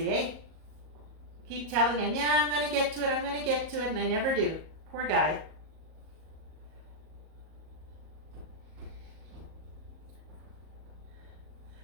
eh? Keep telling him, yeah, I'm gonna get to it, I'm gonna get to it, and I never do. Poor guy.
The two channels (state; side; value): late; left; 38 ms